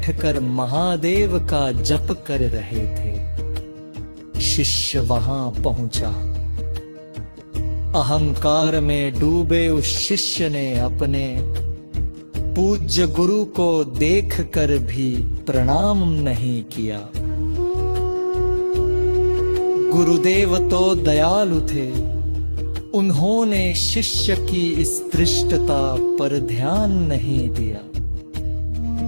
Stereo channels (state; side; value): inverted; both; correlation -1.00